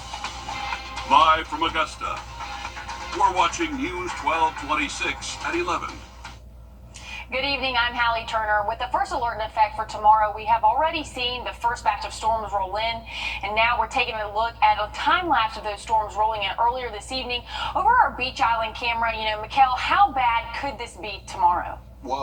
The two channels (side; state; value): both; identical; correlation 1.00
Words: Live from Augusta, we're watching News 1226 at 11. Good evening, I'm Hallie Turner. With the first alert in effect for tomorrow, we have already seen the first batch of storms roll in, and now we're taking a look at a time lapse of those storms rolling in earlier this evening. Over our Beach Island camera, Mikkel, how bad could this be tomorrow?